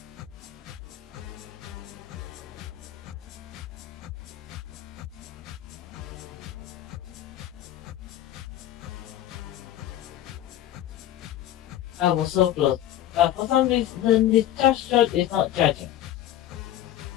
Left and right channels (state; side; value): quieter; right; 12.4 dB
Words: I was so close, but for some reason the charge shot is not charging.